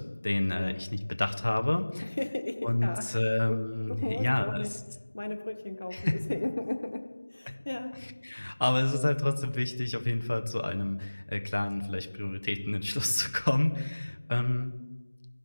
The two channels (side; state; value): both; inverted; correlation -1.00